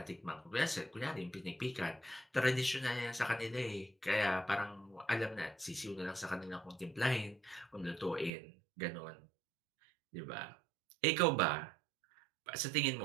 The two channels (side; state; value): left; drops out; at 8.3 s